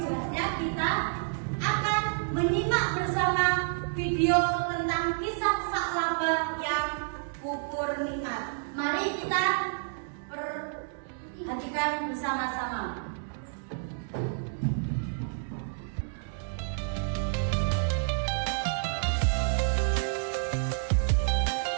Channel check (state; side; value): silent; left; digital silence